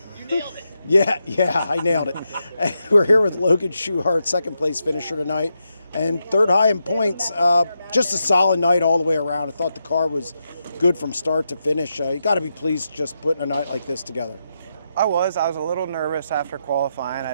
Yeah, I nailed it. And we're here with Logan Schuchart, second place finisher tonight, and third high in points. Just a solid night all the way around. I thought the car was good from start to finish. You got to be pleased just putting a night like this together. I was a little nervous after qualifying. I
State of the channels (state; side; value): inverted; both; correlation -0.85